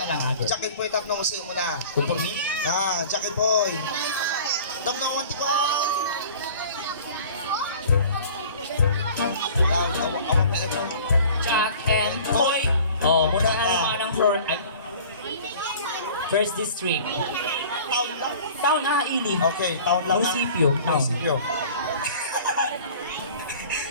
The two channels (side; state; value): both; inverted; correlation -0.45